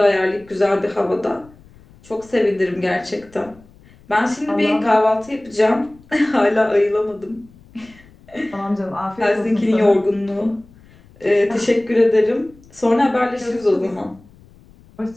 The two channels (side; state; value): left; noise; rumble, 26 dB below the sound